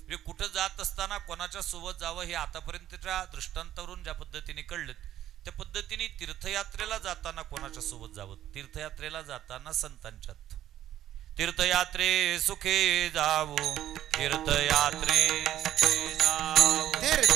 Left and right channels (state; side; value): quieter; left; 12.3 dB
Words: कुठं जात असताना कोणाच्या सोबत जावं हे आतापर्यंतच्या दृष्टांतावरून ज्या पद्धतीने कळलं त्या पद्धतीने तीर्थयात्रेला जाताना कोणाच्या सोबत जावं? तीर्थयात्रेला जाताना संतांच्यात. तीर्थयात्रे सुखे जावो, तीर्थयात्रे सुखे जावो,